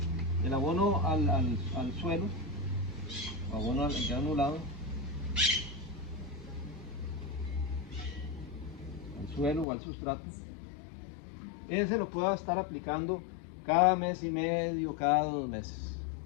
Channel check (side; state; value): right; drops out; at 9.7 s